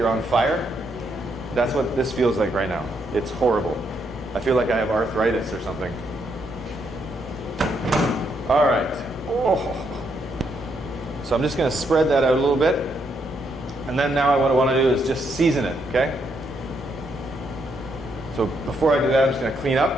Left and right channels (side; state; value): both; normal; correlation 0.76